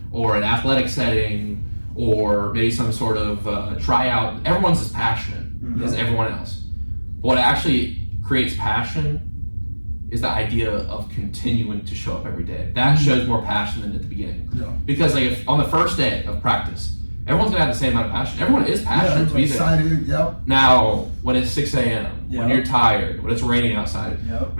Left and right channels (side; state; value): both; inverted; correlation -1.00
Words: or an athletic setting or maybe some sort of tryout, everyone's as passionate as everyone else. But what actually creates passion is the idea of continuing to show up every day. That shows more passion than at the beginning. Because like if on the first day of practice, everyone's gonna have the same amount of passion. Everyone is passionate to be there. Excited, Now, when it's 6 a.m., when you're tired, when it's raining outside,